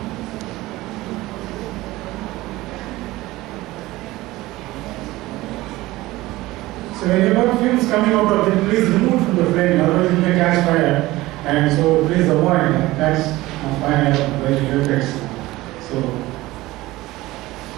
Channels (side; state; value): left; quieter; 18.4 dB